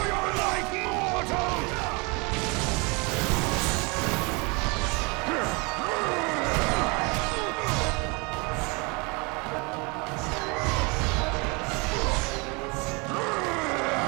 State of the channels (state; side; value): quieter; left; 29.1 dB